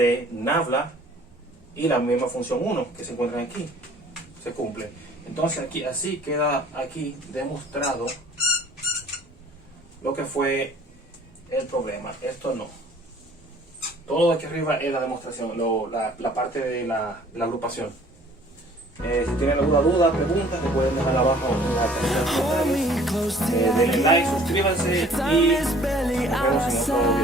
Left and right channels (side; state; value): both; normal; correlation 0.53